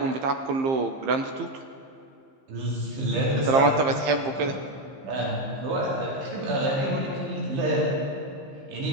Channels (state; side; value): late; left; 15 ms